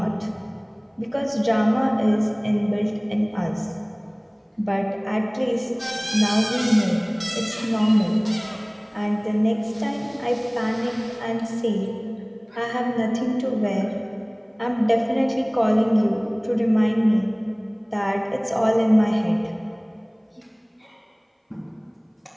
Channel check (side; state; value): both; identical; correlation 1.00